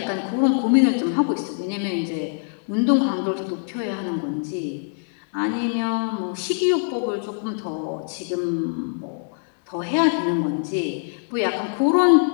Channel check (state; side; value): silent; right; 61 dB below the other